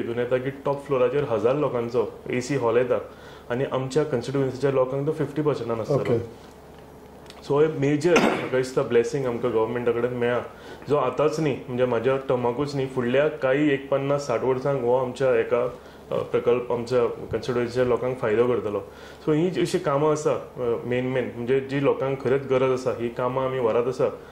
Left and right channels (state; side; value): identical; both; correlation 1.00